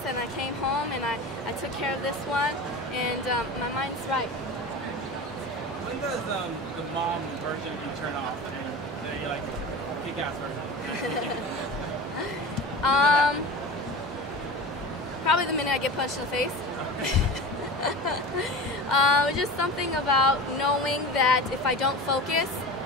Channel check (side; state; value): both; normal; correlation 0.32